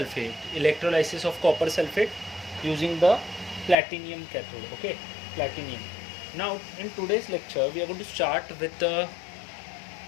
electrolysis of copper sulfate using the platinum cathode, okay, platinum. Now in today's lecture we are going to start with the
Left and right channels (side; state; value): right; drops out; at 3.8 s